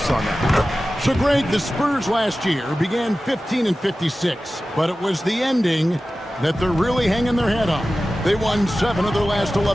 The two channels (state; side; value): normal; both; correlation 0.95